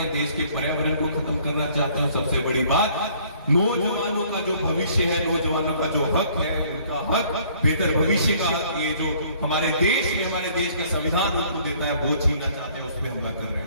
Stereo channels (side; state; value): both; inverted; correlation -0.59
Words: देश के पर्यावरण को खत्म करना चाहते हैं। सबसे बड़ी बात, नौजवानों का जो भविष्य है, नौजवानों का जो हक है, उनका हक, बेहतर भविष्य का हक, ये जो हमारे देश में हमारे देश का संविधान उनको देता है, वो छीनना चाहते हैं, उस पर हमला कर रहे